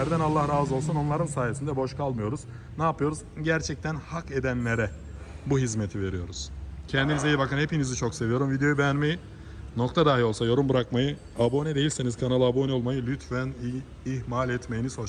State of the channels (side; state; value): both; identical; correlation 1.00